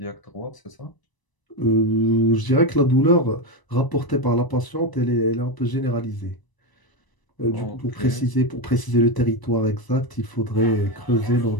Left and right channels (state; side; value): late; right; 1.0 ms